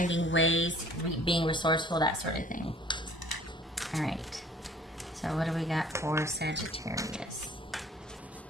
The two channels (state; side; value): normal; both; correlation 0.54